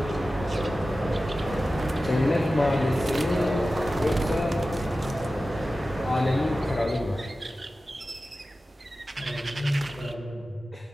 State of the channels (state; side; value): normal; both; correlation 0.95